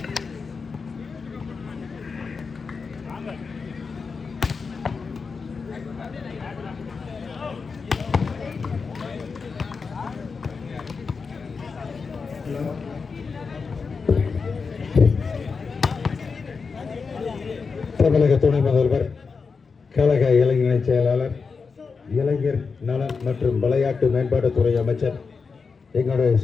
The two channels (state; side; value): quieter; right; 5.0 dB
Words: தமிழக துணை முதல்வர், கழக இளைஞர் செயலாளர், இளைஞர் நலன் மற்றும் விளையாட்டு மேம்பாட்டுத்துறை அமைச்சர், எங்களுடைய